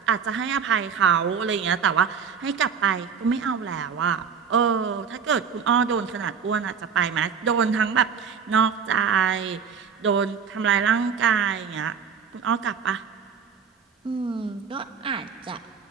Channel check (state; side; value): quieter; left; 6.6 dB